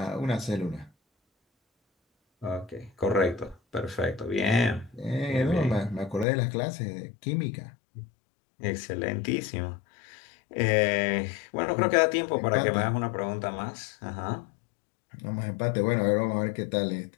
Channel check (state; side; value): drops out; right; at 6.2 s